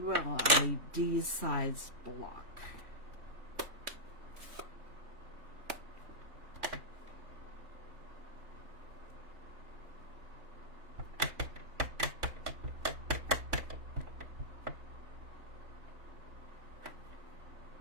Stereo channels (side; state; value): left; late; 3.5 ms